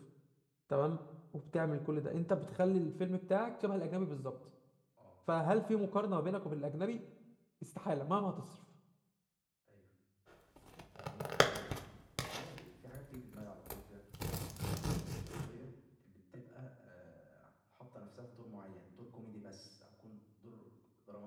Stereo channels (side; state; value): both; identical; correlation 1.00